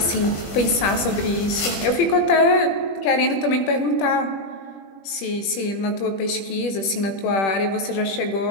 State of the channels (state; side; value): late; right; 21 ms